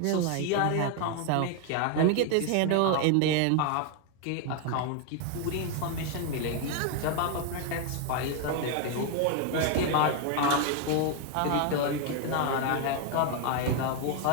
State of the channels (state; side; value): different; both; correlation 0.01